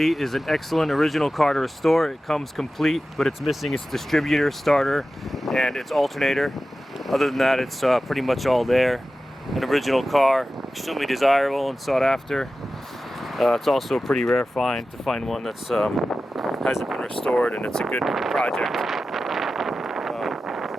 is an excellent original car to restore. It comes complete, but it's missing its distributor, starter, and its alternator. Other than that, it's pretty much all there. An original car, extremely desirable and sought after. It's also a pretty rare find to find one that's hasn't been restored, and it's a good project.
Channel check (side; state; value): both; normal; correlation 0.94